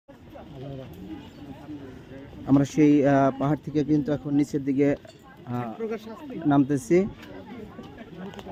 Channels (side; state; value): both; identical; correlation 1.00